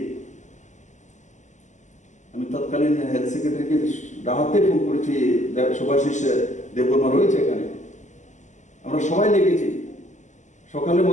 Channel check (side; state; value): right; late; 0.35 ms